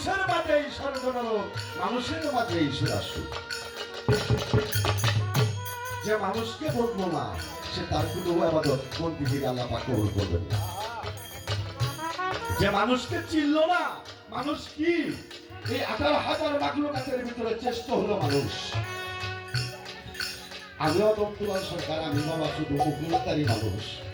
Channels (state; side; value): identical; both; correlation 1.00